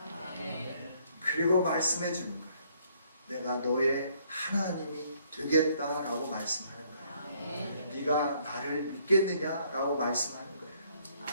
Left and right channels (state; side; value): inverted; both; correlation -0.66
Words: 그리고 말씀해 주는 거예요. 내가 너의 하나님이 되겠다라고 말씀하는 거예요. 네가 나를 믿겠느냐라고 말씀하는 거예요.